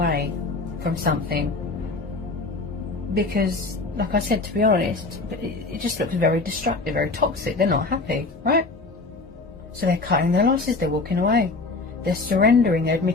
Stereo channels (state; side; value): quieter; right; 3.6 dB